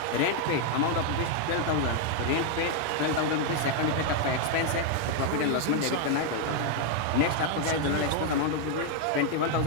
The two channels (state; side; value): different; both; correlation 0.00